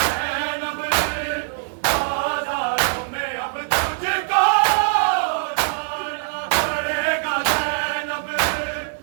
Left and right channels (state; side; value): silent; left; digital silence